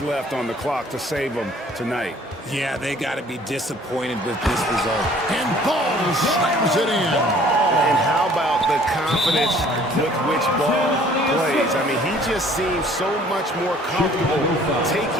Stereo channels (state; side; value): normal; both; correlation 0.55